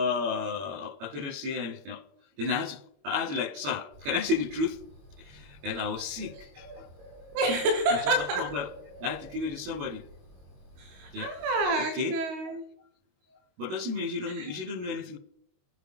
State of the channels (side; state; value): left; late; 22 ms